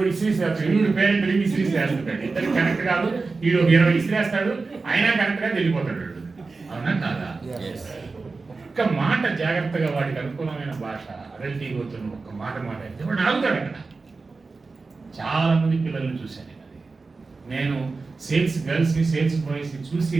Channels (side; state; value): left; quieter; 4.0 dB